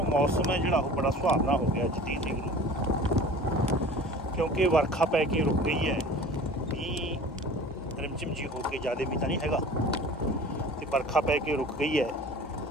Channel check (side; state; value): both; normal; correlation 0.42